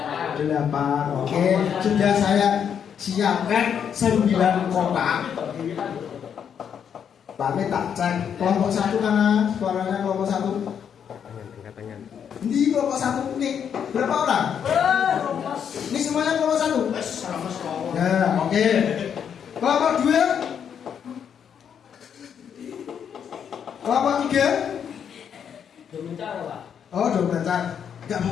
8. Oke. Sudah saya siapkan 9 kotak. Pak Mit tak cek kelompok 1 karena suaranya kelompok 1. Ini kelompok 1 nih berapa orang? Ini semuanya kelompok 1. Nah, oke. Kelompok 2. Kelompok 3. Oh, domencar. Enggak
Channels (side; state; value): right; quieter; 8.0 dB